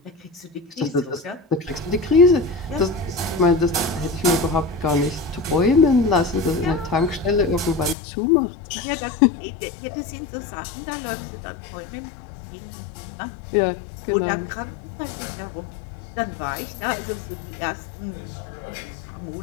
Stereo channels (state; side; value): drops out; right; at 8.0 s